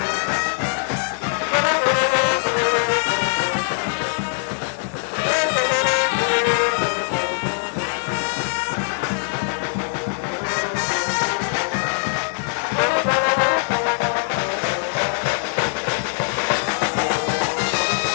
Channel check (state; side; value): silent; right; 64 dB below the other